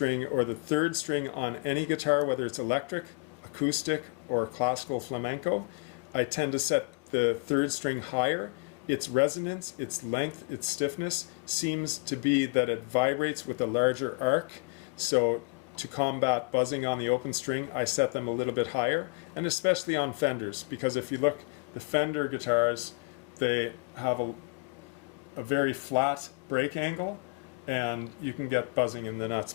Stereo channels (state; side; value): quieter; right; 32.9 dB